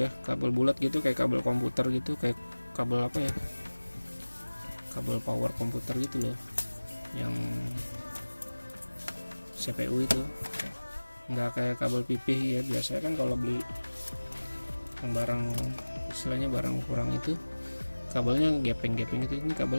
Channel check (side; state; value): both; inverted; correlation -1.00